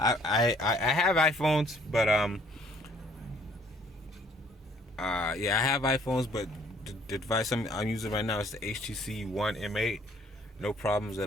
iPhones, but I have iPhones, but the device I'm using right now is the HTC One M8. No problems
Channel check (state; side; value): normal; both; correlation 0.61